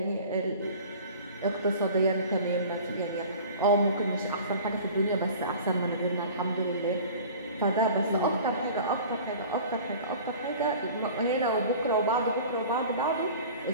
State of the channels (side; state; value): both; inverted; correlation -0.42